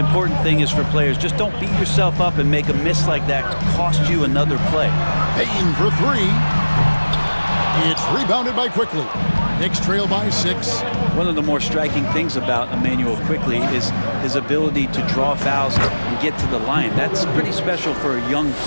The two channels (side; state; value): both; inverted; correlation -1.00